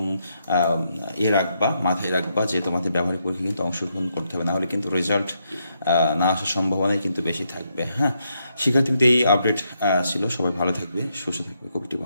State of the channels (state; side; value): inverted; both; correlation -0.79